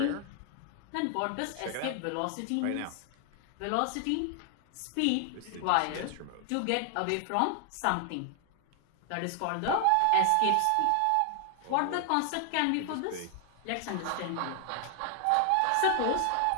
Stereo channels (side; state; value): both; different; correlation 0.00